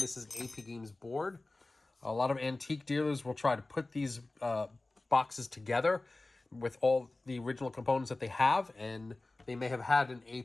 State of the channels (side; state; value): right; quieter; 3.0 dB